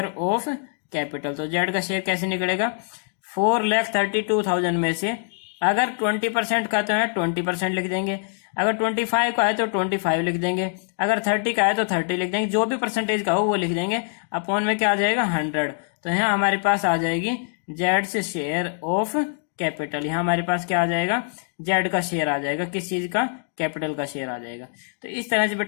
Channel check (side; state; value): right; silent; 63 dB below the other